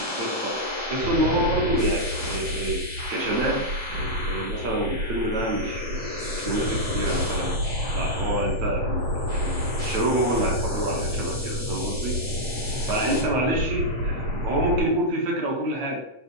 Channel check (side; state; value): left; late; 7.8 ms